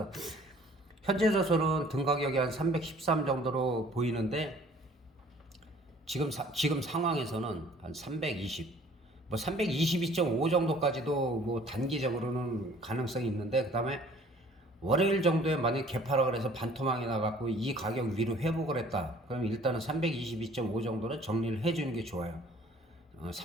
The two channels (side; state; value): both; normal; correlation 0.54